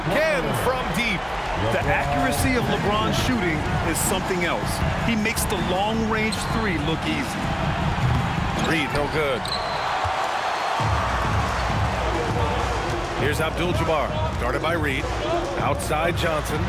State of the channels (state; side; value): identical; both; correlation 1.00